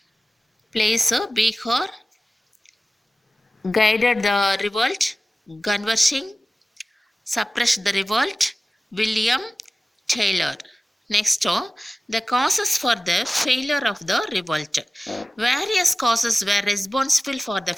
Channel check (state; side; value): normal; both; correlation 0.97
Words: Place Bihar, guided the revolt, Ganwar Singh, suppressed the revolt? William Taylor. Next, the causes for the failure of the revolt. Various causes were responsible for the